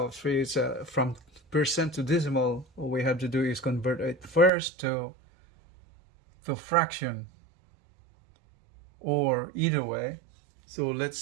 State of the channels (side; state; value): left; drops out; at 4.5 s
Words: is from percent to decimal, all we have to do is convert it first to fraction, or either way. So